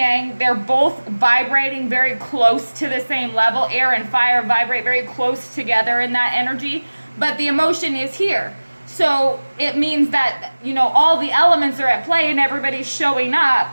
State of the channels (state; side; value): inverted; both; correlation -1.00